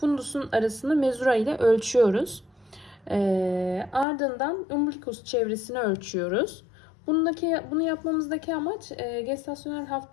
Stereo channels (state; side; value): drops out; right; at 4.0 s